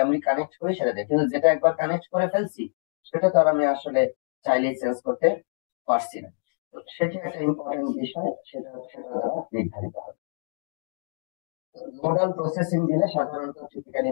আমি কানেক্ট করি সেটা দিয়ে। কিন্তু যেটা একবার কানেক্ট করে ফেলছি সেটা তো আর আমি আসলে চাইলেই চেঞ্জ করতে পারছি না। তো সেটা একটা ইম্পর্টেন্ট বিষয়, সেটা সেটা দ্বারা নির্ধারিত হবে। নোডাল প্রসেসিং দিলে সাধারণত টিপিক্যালি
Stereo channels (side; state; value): right; silent; digital silence